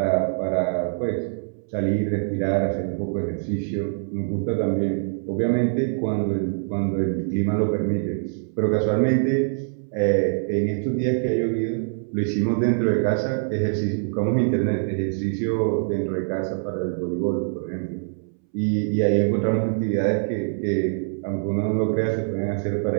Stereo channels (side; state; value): left; silent; 63 dB below the other